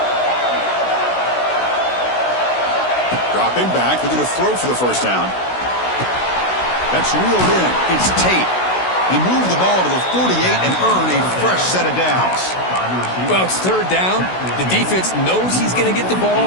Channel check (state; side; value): late; right; 16 ms